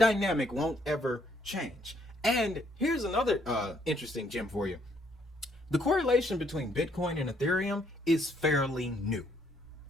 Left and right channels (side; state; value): both; normal; correlation 0.69